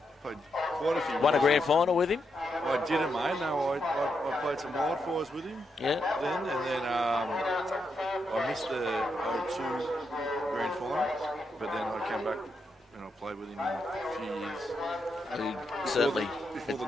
played quite a few. Won a grand final with him. I didn't, mate. No, I played some wildfires with him. Yeah. Then I missed the 02 grand final, but then I came back and I played with him in a few years. Certainly. Before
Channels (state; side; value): normal; both; correlation 0.82